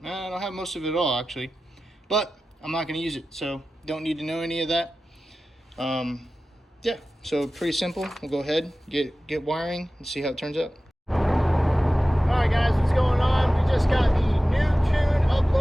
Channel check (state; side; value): normal; both; correlation 0.95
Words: don't have most of it all actually, but I'm not going to use it, so don't need to know any of that. Yeah, so pretty simple. We'll go ahead, get wiring and see how it turns out. Alright guys, what's going on? We just got the new tune